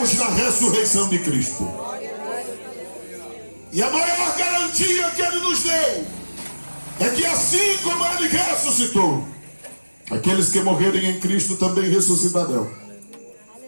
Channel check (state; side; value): inverted; both; correlation -1.00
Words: na ressurreição de Cristo. E a maior garantia que ele nos deu é que assim como ele ressuscitou, aqueles que morrerem em Cristo também ressuscitarão.